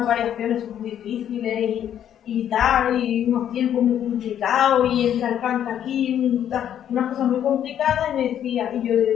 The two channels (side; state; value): right; quieter; 10.1 dB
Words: variaciones muy difíciles y tal, y unos tiempos muy complicados, y entra el canto aquí, unas cosas muy complicadas, y me decía, y yo le